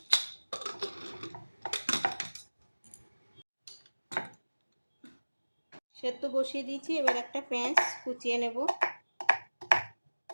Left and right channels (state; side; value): inverted; both; correlation -1.00